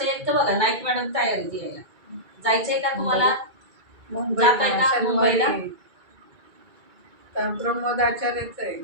तर बघा नाईक मॅडम तयार आहे यायला. जायचंय का तुम्हाला? जाताय का मुंबईला? प्रमोद आचार्यच आहे.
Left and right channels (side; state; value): left; late; 2.3 ms